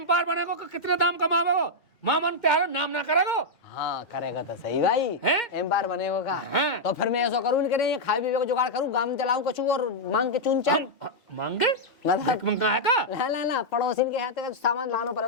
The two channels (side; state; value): both; normal; correlation -0.04